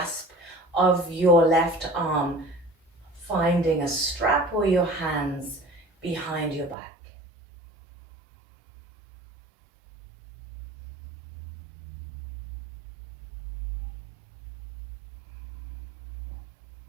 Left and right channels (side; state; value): left; drops out; at 6.8 s